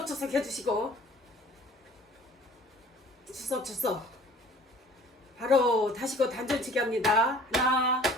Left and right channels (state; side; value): normal; both; correlation 0.50